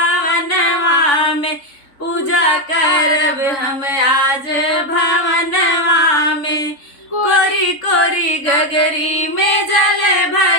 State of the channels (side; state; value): right; late; 3.8 ms